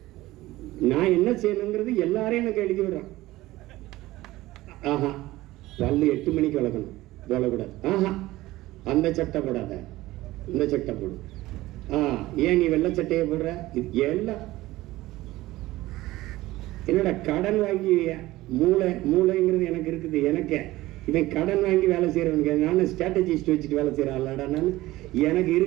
நான் என்ன செய்யணுங்கிறது எல்லாரையும் எனக்கு எழுதி விடுறான். ஆஹா, பல்லு 8 மணிக்கு வளர்க்கணும், போடக்கூடாது. ஆஹா, அந்த சட்டை போடாத, இந்த சட்டை போடு. ஏன் நீ வெள்ளை சட்டையை போடுற? இது எல்லாம் என்னோட கடன் வாங்கி மூளைங்கிறது எனக்கு இருக்குது. எனக்கு இவன் கடன் வாங்கி வேலை செய்யறவனுக்கு நான் ஸ்ட்ராட்டஜிஸ்ட் வச்சுட்டு வேலை செய்யற ஆளாடா. நான் எனக்கு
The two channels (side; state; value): left; quieter; 17.6 dB